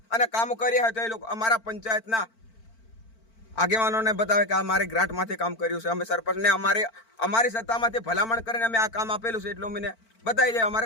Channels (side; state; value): right; late; 4.5 ms